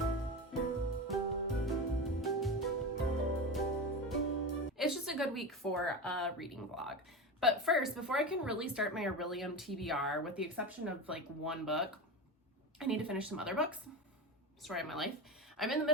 It's just a good week for a reading vlog. But first, before I can really start my Aurelium TBR, with the exception of like one book, I need to finish some other books. Story of my life. I'm in the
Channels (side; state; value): both; normal; correlation 0.23